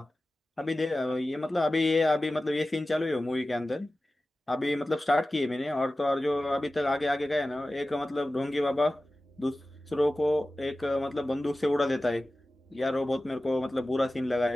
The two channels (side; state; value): both; normal; correlation 0.96